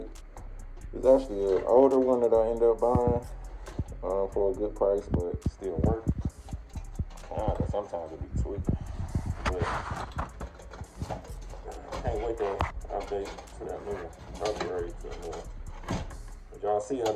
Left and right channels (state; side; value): identical; both; correlation 1.00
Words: It's actually an older one that I ended up buying for a good price, but it still works. Sometimes it be tweaking. But I can't wait to update to that new upgrade to the new one. But y'all see how